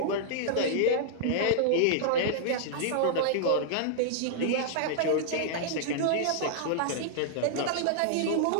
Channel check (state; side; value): different; both; correlation -0.01